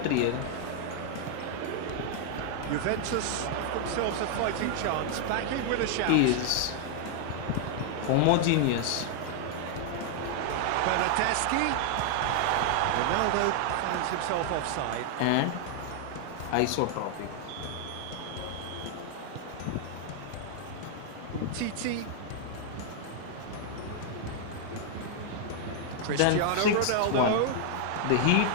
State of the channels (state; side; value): different; both; correlation 0.00